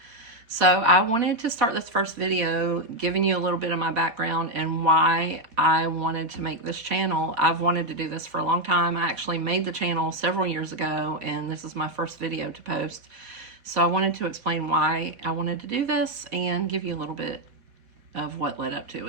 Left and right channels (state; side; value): late; left; 4.2 ms